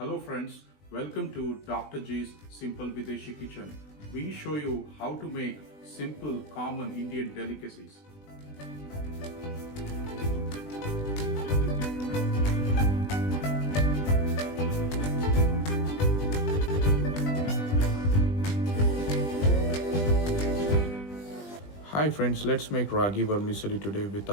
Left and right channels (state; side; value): late; right; 20 ms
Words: Hello friends, welcome to Dr. G's Simple Videshi Kitchen. We show you how to make simple, common Indian delicacies. Hi friends, let's make Ragi Vermicelli today